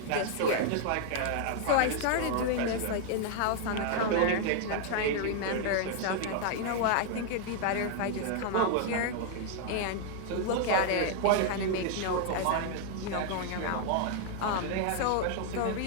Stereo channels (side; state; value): both; different; correlation 0.00